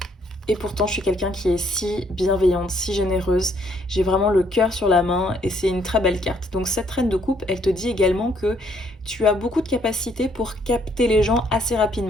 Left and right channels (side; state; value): both; normal; correlation 0.67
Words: Et pourtant, je suis quelqu'un qui est si bienveillante, si généreuse. J'ai vraiment le cœur sur la main et c'est une très belle carte. Donc cette reine de coupe, elle te dit également que tu as beaucoup de capacité pour capter les gens assez